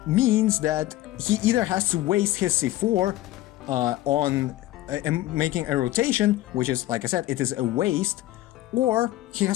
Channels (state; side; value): quieter; right; 15.9 dB